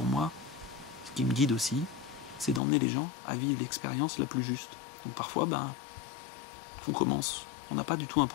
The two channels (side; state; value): right; drops out; at 2.6 s